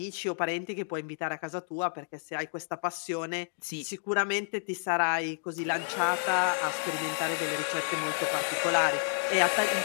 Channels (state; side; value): silent; right; digital silence